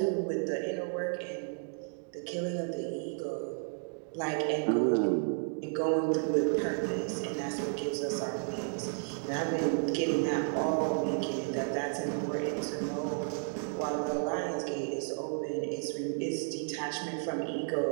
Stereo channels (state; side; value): silent; left; 56 dB below the other